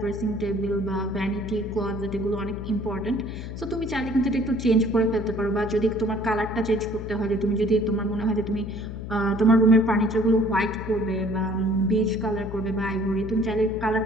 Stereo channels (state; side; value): noise; left; hum, 8 dB below the sound